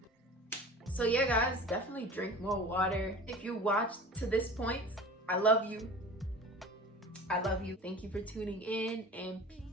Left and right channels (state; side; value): normal; both; correlation 0.38